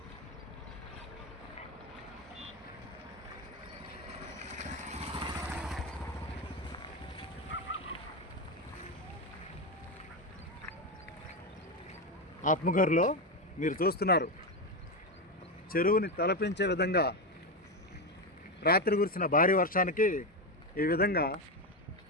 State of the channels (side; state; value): both; normal; correlation 0.11